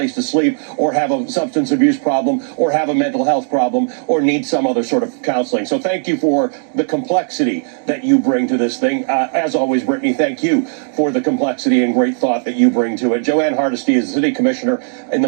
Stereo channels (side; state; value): left; silent; digital silence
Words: to sleep, or have a substance abuse problem, or have a mental health problem, or need some other sort of counseling. So thank you for the complexity that you bring to this thing. As always, Brittany, thank you for the complexity and great thought that you bring to it. Joanne Hardesty is the city commissioner in